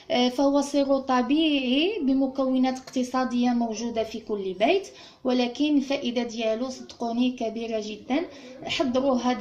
فهو سيرو طبيعي بمكونات اقتصاديه موجوده في كل بيت، ولكن الفائده ديالو صدقوني كبيره جدا. حضروها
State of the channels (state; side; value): identical; both; correlation 1.00